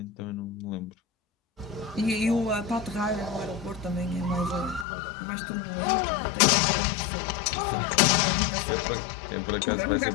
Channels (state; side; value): drops out; right; at 4.9 s